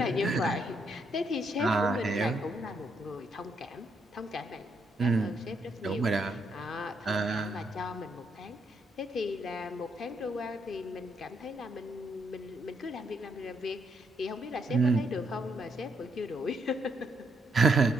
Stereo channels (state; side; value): normal; both; correlation 0.75